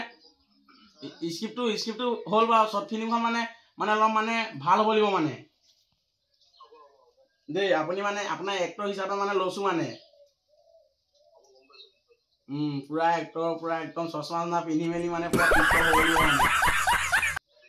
স্ক্ৰিপ্টটো হ'ল বাৰু শৰ্ট ফিল্মখন মানে অলপ মানে ভাল হ'ব লাগিব মানে দেই আপুনি মানে আপোনাৰ এক্টৰ হিচাপে মানে লৈছো মানে পুৰা এক্টৰ পুৰা একদম চশমা পিন্ধি মেলি মানে পুৰা হ'ব লাগিব মানে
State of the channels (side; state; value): both; identical; correlation 1.00